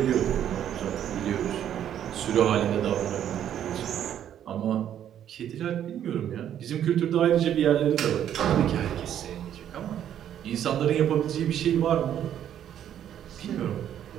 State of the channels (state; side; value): quieter; left; 10.3 dB